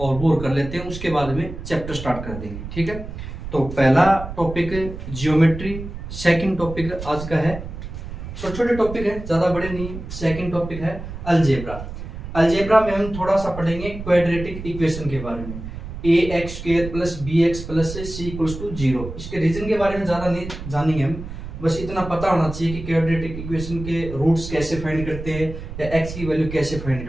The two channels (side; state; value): right; noise; rumble, 9 dB below the sound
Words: वो कर लेते हैं, उसके बाद में चैप्टर स्टार्ट कर देंगे, ठीक है। तो पहला टॉपिक जियोमेट्री, सेकंड टॉपिक आज का है, छोटे छोटे टॉपिक है, ज्यादा बड़े नहीं। सेकंड टॉपिक है अलजेब्रा। अलजेब्रा में हम थोड़ा सा पढ़ेंगे क्वाड्रेटिक इक्वेशन के बारे में, ax² + bx + c = 0। इसके रीजन के बारे में ज्यादा नहीं जानेंगे हम, बस इतना पता होना चाहिए कि क्वाड्रेटिक इक्वेशन के रूट्स कैसे फाइंड करते हैं या x की वैल्यू कैसे फाइंड